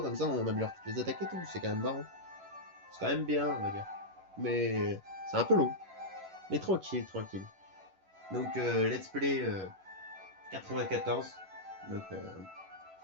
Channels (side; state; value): left; late; 11 ms